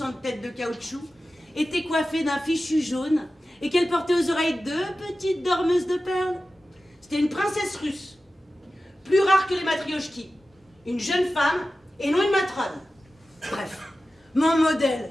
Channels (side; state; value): both; normal; correlation 0.94